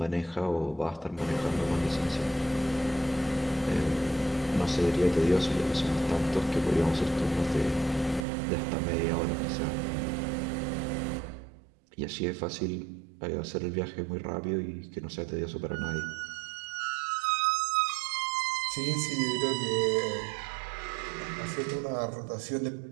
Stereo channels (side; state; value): left; drops out; at 8.2 s